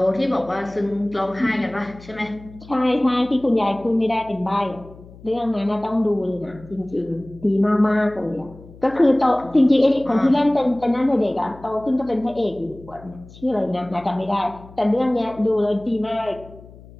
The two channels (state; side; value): noise; left; hum, 20 dB below the sound